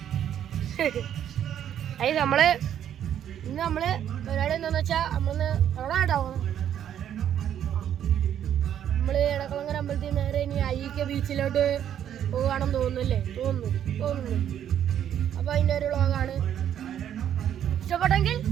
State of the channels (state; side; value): quieter; left; 10.0 dB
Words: അയ്യ ഇന്ന് നമ്മള് പരിപാടി എന്താന്ന് വെച്ചാ നമ്മള് എവിടെ ഉണ്ടാവും, നമ്മള് എടക്കുളങ്ങര അമ്പലത്തിൽ നേരെ ഇനി അയ്യക്ക ബീച്ചിലോട്ട് പോവുകയാണെന്ന് തോന്നുന്നില്ലേ? തോന്നുന്നു. അപ്പൊ അതിന്റെ ഒരു വ്ളോഗാണ്. ഇഷ്ടപ്പെട്ടെങ്കിൽ